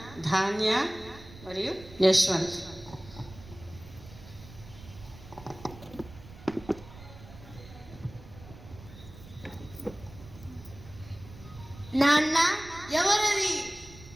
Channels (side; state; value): right; noise; rumble, 18 dB below the sound